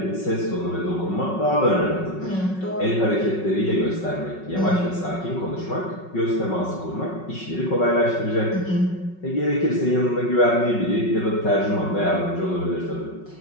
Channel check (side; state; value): right; late; 5.4 ms